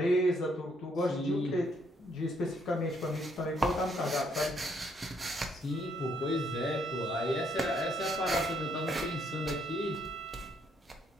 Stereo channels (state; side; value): normal; both; correlation 0.70